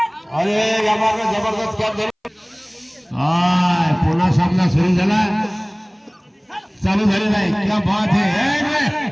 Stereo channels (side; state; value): both; identical; correlation 1.00